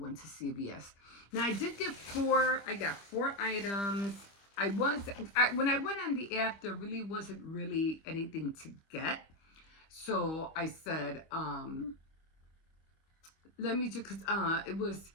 to CVS. Now I did get I got 4 items. When I went on the app, there really wasn't really anything to get. So I said, let me just, it was,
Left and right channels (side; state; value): right; late; 25 ms